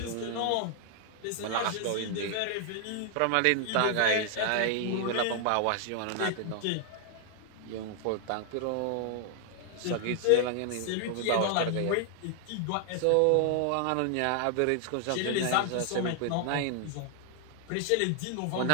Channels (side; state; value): both; different; correlation 0.00